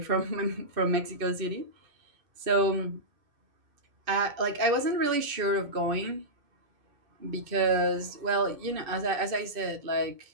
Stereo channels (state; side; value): late; left; 2.5 ms